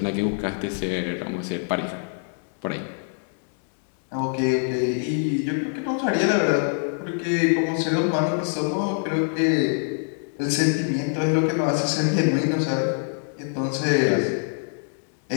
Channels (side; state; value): right; silent; 58 dB below the other